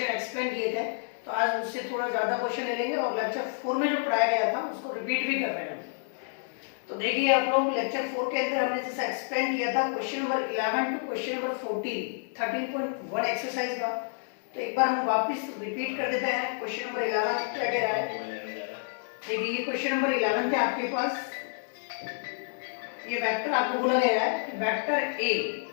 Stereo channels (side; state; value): right; silent; 57 dB below the other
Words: एक्सप्लेन किए थे, तो आज उससे थोड़ा ज़्यादा क्वेश्चन ले लेंगे और लेक्चर 4 में जो पढ़ाया गया था उसको रिपीट भी कर रहे हैं। तो देखिए आप लोग, लेक्चर 4 के अंदर हमने जैसा एक्सप्लेन किया था question number 11 to question number 13.1 exercise का। तो एक बार हम वापस रिपीट कर देते हैं। क्वेश्चन नंबर 11 क्या कह रहा है, देखिए ये क्वेश्चन नंबर 11 थे आपके पास। ये वेक्टर आपको बोला गया है, वेक्टर ए